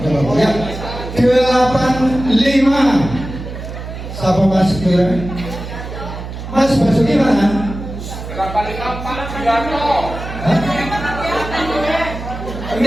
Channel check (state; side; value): noise; right; hum, 9 dB below the sound